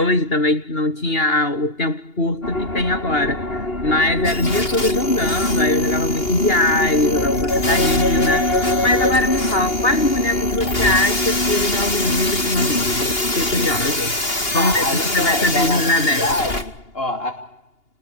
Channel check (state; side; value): late; right; 2.8 ms